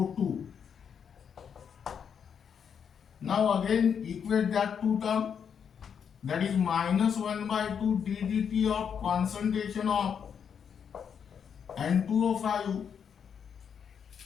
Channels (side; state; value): right; quieter; 7.4 dB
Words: Now again equate that two term, that is minus 1 by 2 ddt of concentration of N2O5,